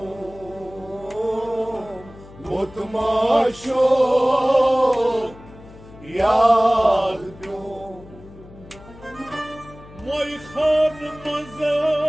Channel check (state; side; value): noise; left; hum, 20 dB below the sound